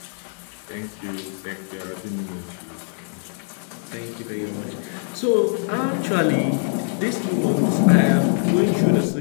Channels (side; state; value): right; silent; 56 dB below the other